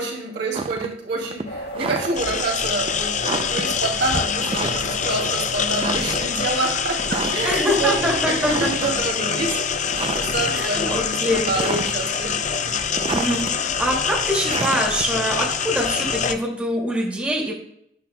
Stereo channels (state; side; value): normal; both; correlation 0.26